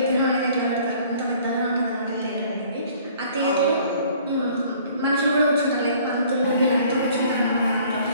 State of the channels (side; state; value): both; inverted; correlation -0.55